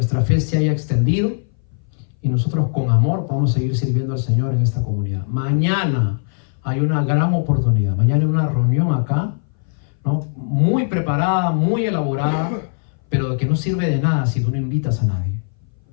fe se haya extendido y nosotros con amor podamos seguir sirviendo al Señor en esta comunidad. Mañana hay una gran oportunidad. Mañana hay una reunión acá, ¿no? Muy preparada, muy elaborada, pero de que no sirve de nada si tú no invitas a nadie.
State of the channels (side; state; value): right; silent; 60 dB below the other